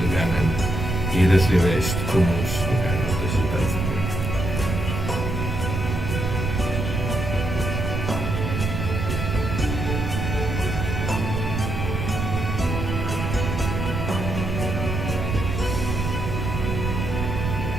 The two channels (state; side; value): noise; right; rumble, 2 dB below the sound